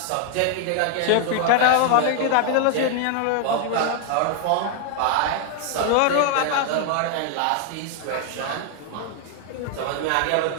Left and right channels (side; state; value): both; different; correlation 0.00